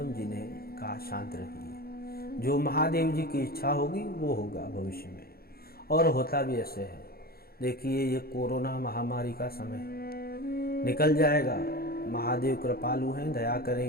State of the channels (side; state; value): right; late; 0.44 ms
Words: जी ने कहा शांत रहिए, जो महादेव जी की इच्छा होगी वो होगा भविष्य में, और होता भी ऐसे है। देखिए ये कोरोना महामारी का समय निकल जाएगा, महादेव कृपालु हैं, दया